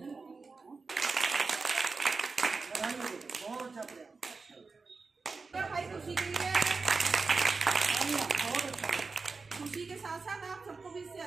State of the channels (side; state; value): left; quieter; 4.3 dB